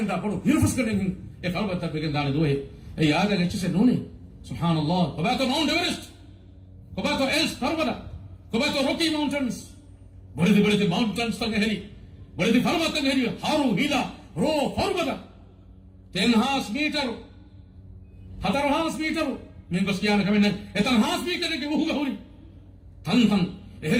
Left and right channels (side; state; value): both; identical; correlation 1.00